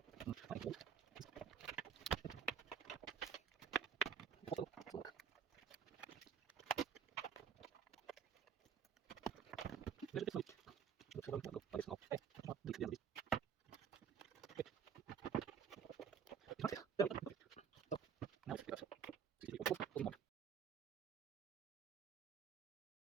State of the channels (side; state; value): left; quieter; 7.6 dB